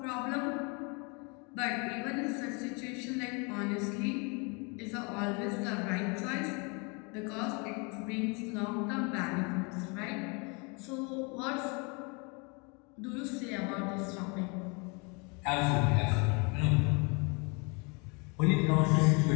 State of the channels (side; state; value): right; quieter; 31.7 dB